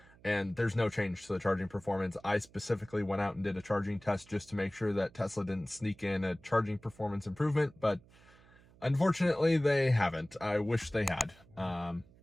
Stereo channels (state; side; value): noise; right; hum, 26 dB below the sound